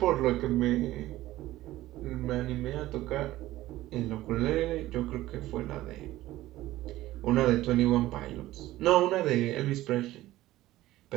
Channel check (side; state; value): left; quieter; 16.0 dB